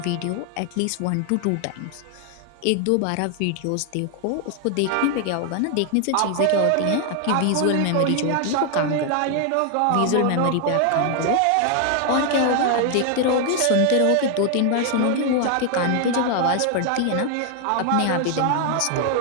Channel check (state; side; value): different; both; correlation 0.00